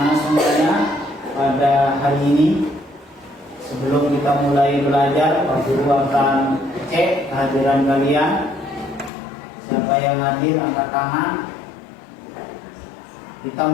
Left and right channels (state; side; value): drops out; right; at 9.1 s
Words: semuanya, pada hari ini sebelum kita mulai belajar, Pak Guru akan cek kehadiran kalian. Siapa yang hadir angkat tangan. Kita